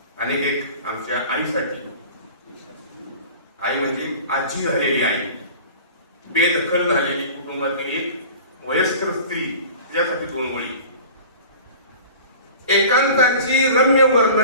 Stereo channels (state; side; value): inverted; both; correlation -0.41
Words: आणि एक आमच्या आईसाठी, आई म्हणजे आजी झालेली आई, बेदखल झालेली कुटुंबातील एक वयस्कर स्त्री, त्यासाठी 2 ओळी. एकांताची रम्य